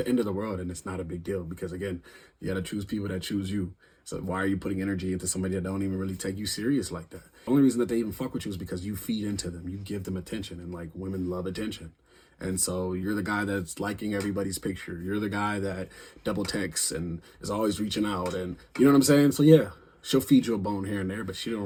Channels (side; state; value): both; identical; correlation 1.00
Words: end of the world, and it's not a big deal because, again, you got to choose people that choose you. So why are you putting energy into somebody that don't even really take you serious like that? The only reason that they even fuck with you is because you feed into them. You give them attention, and like, women love attention. And so you're the guy that's liking everybody's picture. You're the guy that double texts and is always reaching out, and you know what I'm saying? So yeah, she'll feed you a bone here and there, but she don't